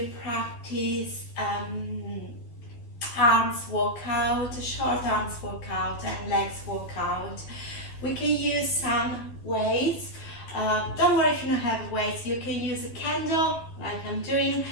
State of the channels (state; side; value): late; right; 12 ms